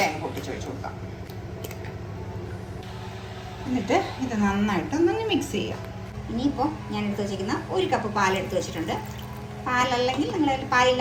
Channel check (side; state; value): both; identical; correlation 1.00